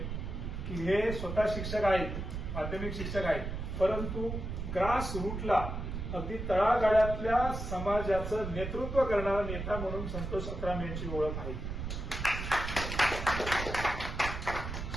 की हे स्वतः शिक्षक आहेत, माध्यमिक शिक्षक आहेत, परंतु ग्रास रूटला अगदी तळागाळातल्या समाजाचं नेतृत्व करणारा नेता म्हणून संतोष अत्राम यांची ओळख आहे.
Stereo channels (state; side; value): noise; right; rumble, 5 dB below the sound